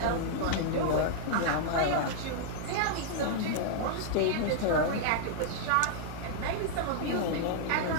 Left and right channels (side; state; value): both; different; correlation -0.01